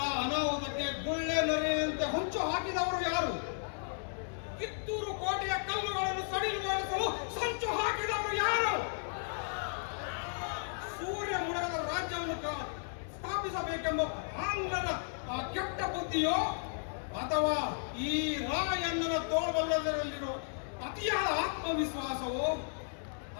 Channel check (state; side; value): silent; right; digital silence